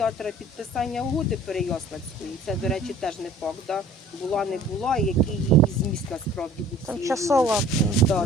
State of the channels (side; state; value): both; normal; correlation 0.50